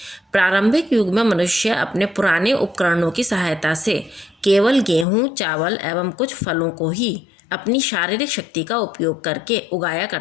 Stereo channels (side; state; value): right; drops out; at 5.1 s